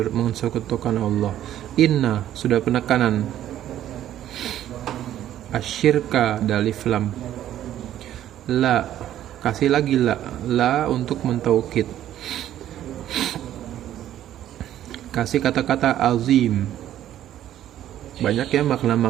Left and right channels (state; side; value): quieter; left; 12.0 dB